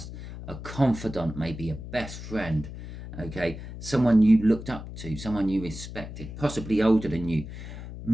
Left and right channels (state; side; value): noise; left; hum, 11 dB below the sound